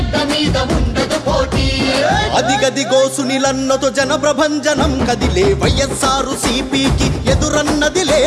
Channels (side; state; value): both; identical; correlation 1.00